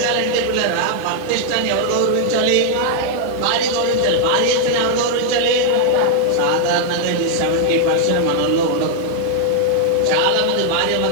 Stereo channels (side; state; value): both; different; correlation 0.00